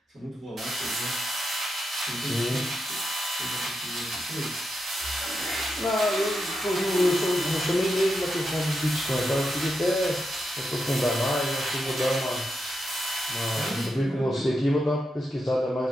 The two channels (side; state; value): both; normal; correlation 0.86